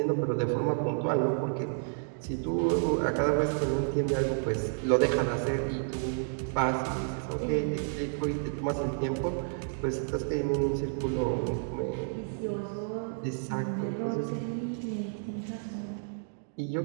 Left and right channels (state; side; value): silent; left; digital silence